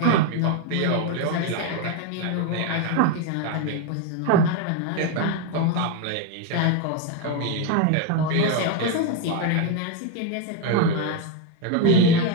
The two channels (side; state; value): both; different; correlation 0.02